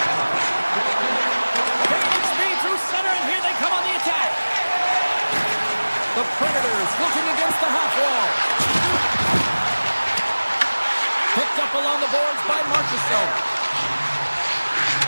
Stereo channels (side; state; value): both; inverted; correlation -1.00